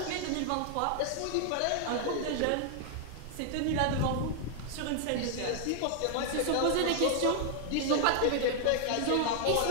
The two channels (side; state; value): both; different; correlation 0.00